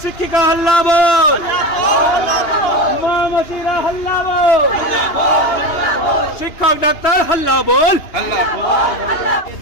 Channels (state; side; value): late; right; 2.8 ms